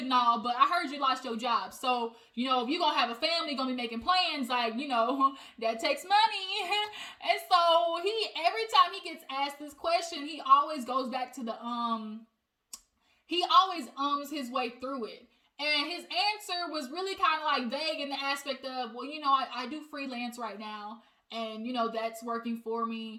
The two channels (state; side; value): identical; both; correlation 1.00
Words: and all, but I heard you lost your job. So, if you're going to have a family, going to be making plans, like, that takes money. And so every time he gets asked this question, he always goes back to he always his way through it. And his answer was really kind of like vague in the aspect of, well, I do freelance right now, and, that's working for